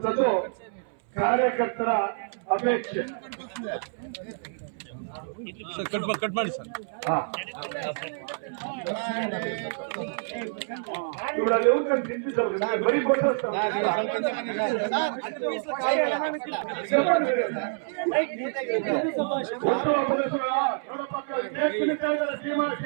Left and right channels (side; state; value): left; silent; 60 dB below the other